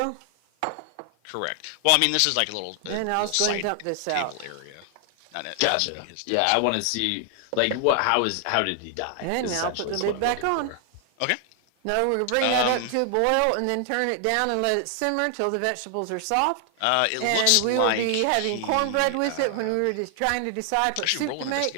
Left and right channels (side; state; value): both; different; correlation 0.00